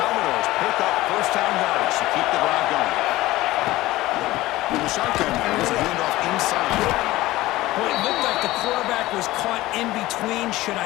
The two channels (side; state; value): right; quieter; 17.6 dB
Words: pick up first down yardage to keep the drive going. In the shotgun, there's a handoff inside. Well, it looked like the quarterback was caught in between. Should